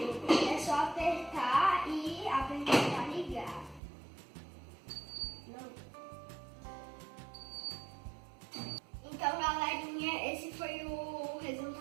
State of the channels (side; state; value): left; drops out; at 3.8 s